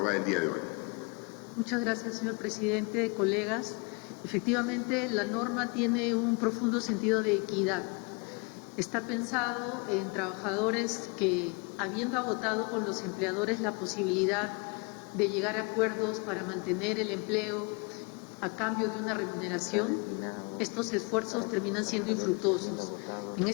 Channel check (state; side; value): quieter; right; 32.0 dB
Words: el día de hoy. Muchas gracias, señor presidente, colegas. Efectivamente, la norma tiene un profundo sentido de equidad. Está pensado en trabajadores que, habiendo agotado con los empleadores la posibilidad de llegar a acuerdos para mantener el empleo a cambio de una remuneración, estos esfuerzos terminan siendo infructuosos. En